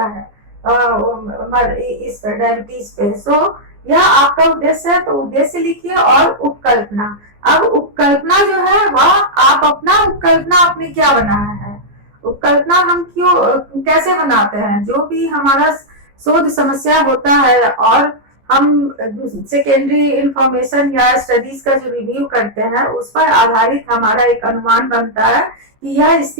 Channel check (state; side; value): late; left; 14 ms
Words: है इस डायबिटीज पे। सो यह आपका उद्देश्य है, तो उद्देश्य लिखिए और उपकल्पना। अब उपकल्पना जो है वह आप अपना उपकल्पना आपने क्या बनाया है, उपकल्पना हम क्यों कैसे बनाते हैं। जो भी हमारा शोध समस्या होता है और हम सेकेंडरी इंफॉर्मेशन या स्टडीज का जो रिव्यू करते हैं उस पर आधारित हमारा एक अनुमान बनता है कि यह